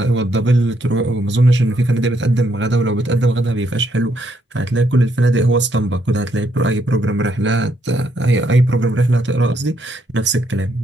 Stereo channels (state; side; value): normal; both; correlation 0.74